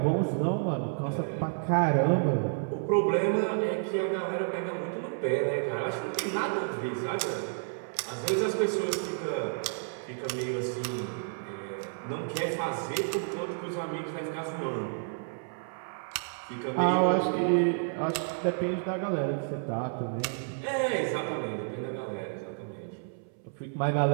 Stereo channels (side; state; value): left; silent; 57 dB below the other